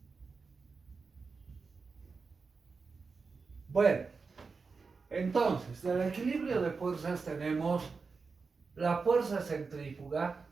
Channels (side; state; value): left; quieter; 4.7 dB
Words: Bueno, entonces, del equilibrio de fuerzas tenemos la fuerza centrífuga